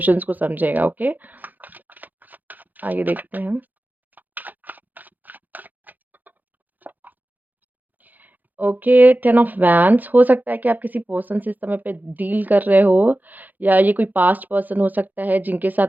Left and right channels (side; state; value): left; late; 0.084 ms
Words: को समझेगा, ओके? आगे देखते हैं। ओके, 10 ऑफ वैंड्स, हो सकता है कि आप किसी पर्सन से इस समय पे डील कर रहे हो, या ये कोई पास्ट पर्सन हो सकता है जिनके